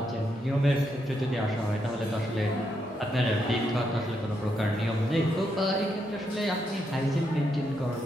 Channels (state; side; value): normal; both; correlation 0.80